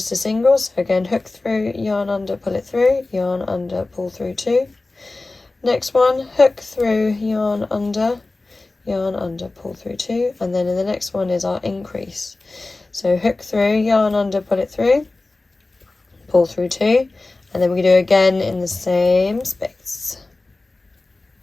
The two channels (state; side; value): quieter; right; 3.2 dB